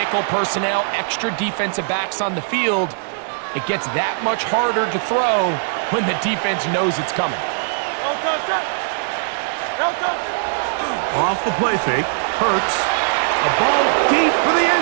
personnel, extra defensive backs on the field. It gets that much harder to throw when the defense knows it's coming. Off the play fake, Hurts. A ball deep for the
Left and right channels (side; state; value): left; silent; digital silence